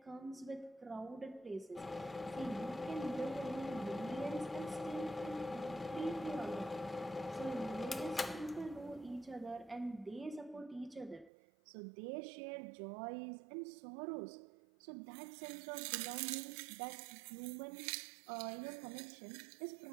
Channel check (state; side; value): drops out; left; at 11.3 s